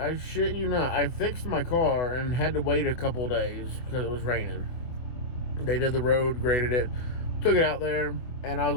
shit you not, I fixed my car and had to wait a couple of days because it was raining. They did the road, graded it, took it out there, and I was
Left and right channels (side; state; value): right; late; 24 ms